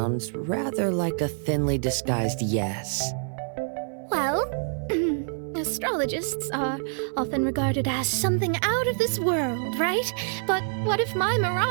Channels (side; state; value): left; silent; 61 dB below the other